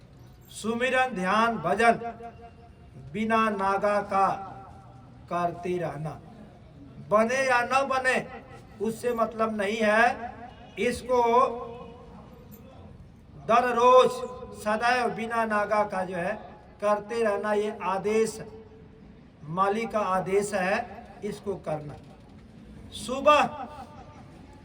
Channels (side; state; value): both; identical; correlation 1.00